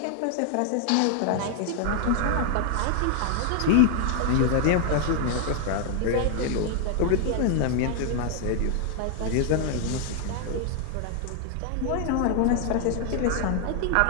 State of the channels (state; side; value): different; both; correlation 0.00